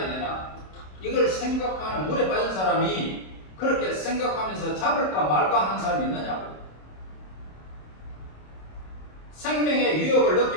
되나 이걸 생각하는 물에 빠진 사람이 그렇게 생각하면서 잡을까 말까 하는 사람이 있느냐고. 생명의 위협을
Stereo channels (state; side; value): late; right; 27 ms